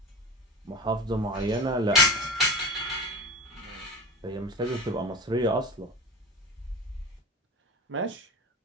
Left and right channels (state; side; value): normal; both; correlation 0.30